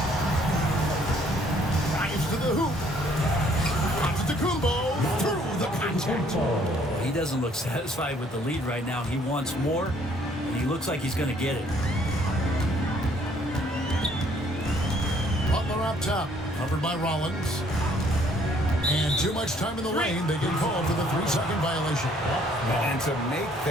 Grimes to the hoop. Antetokounmpo through the contact. He doesn't look satisfied with the lead right now. He wants more, and he looks like he's going to get it. Butler up top, covered by Rollins. And too much time in the lane. They get called for the 3-second violation. And to make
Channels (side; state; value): both; normal; correlation 0.63